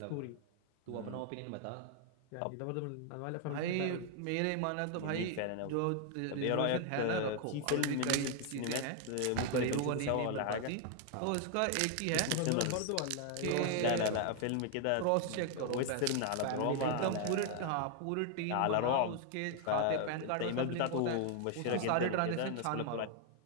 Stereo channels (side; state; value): both; different; correlation 0.00